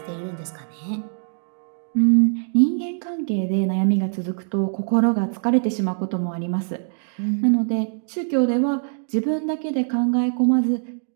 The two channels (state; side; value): silent; left; digital silence